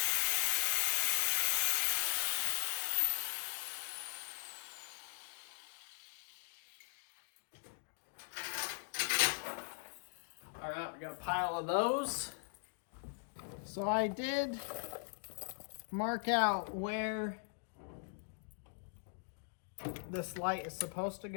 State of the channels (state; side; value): silent; right; digital silence